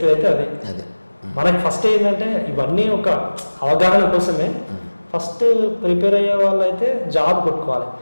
అయితే అది. అదే మనకి ఫస్ట్ ఏంటంటే ఇవన్నీ ఒక అవగాహన కోసమే. ఫస్ట్ ప్రిపేర్ అయ్యే వాళ్ళు అయితే జాబ్ కొట్టుకోవాలి.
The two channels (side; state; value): both; inverted; correlation -1.00